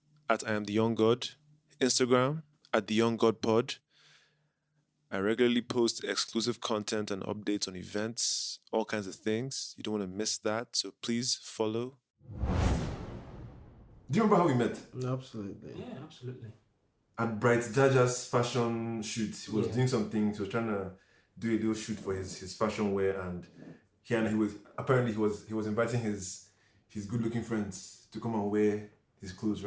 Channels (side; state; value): both; identical; correlation 1.00